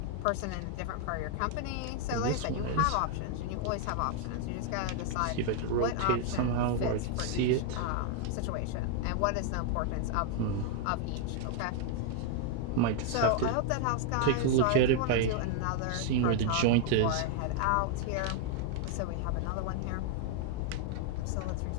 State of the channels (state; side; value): different; both; correlation 0.00